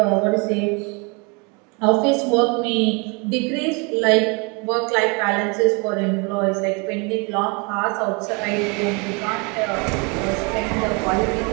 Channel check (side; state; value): left; quieter; 30.6 dB